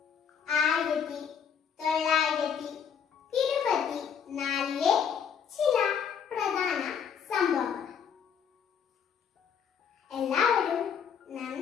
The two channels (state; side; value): quieter; right; 7.4 dB